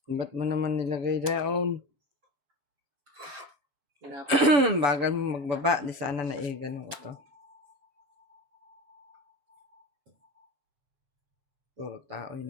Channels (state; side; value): late; left; 7.0 ms